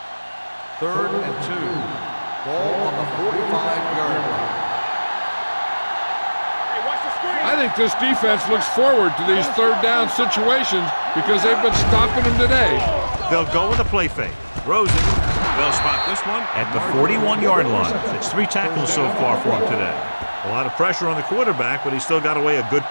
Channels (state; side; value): inverted; both; correlation -1.00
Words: Third and 2. Ball on the 45-yard line. Hey, watch the screen. I think this defense looks forward to these third down situations because they've been stopping them today. They'll go with a play fake. Throws it. They'll spot this one at the 41-yard line. It's 3 tackles so far for him today. A lot of pressure on the quarterback, but he still got away a good